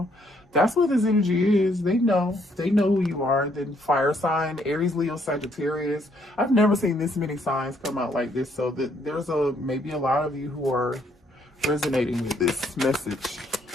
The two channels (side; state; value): both; normal; correlation 0.69